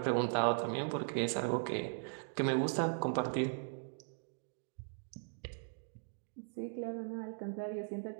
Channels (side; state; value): left; silent; digital silence